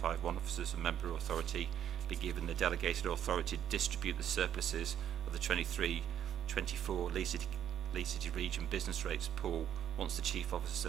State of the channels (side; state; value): left; quieter; 9.9 dB